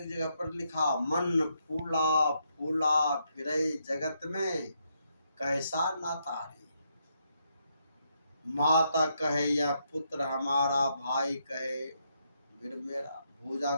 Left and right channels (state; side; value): inverted; both; correlation -0.78